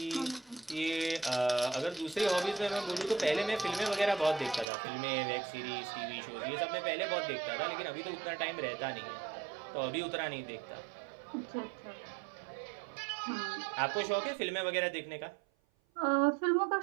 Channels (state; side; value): drops out; left; at 4.7 s